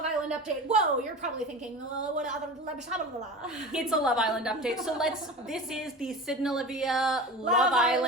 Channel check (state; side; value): normal; both; correlation 0.32